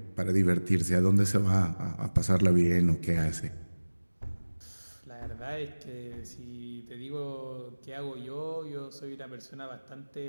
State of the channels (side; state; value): both; inverted; correlation -1.00